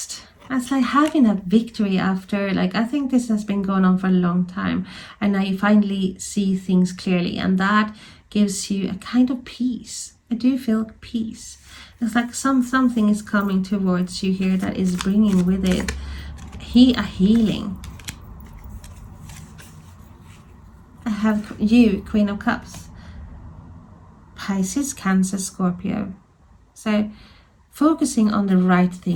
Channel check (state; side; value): identical; both; correlation 1.00